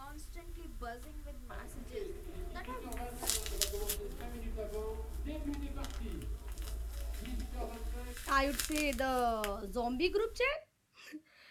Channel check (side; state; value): both; identical; correlation 1.00